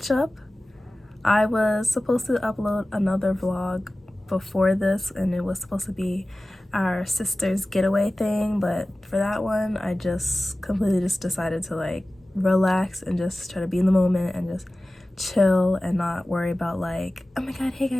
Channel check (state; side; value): normal; both; correlation 0.97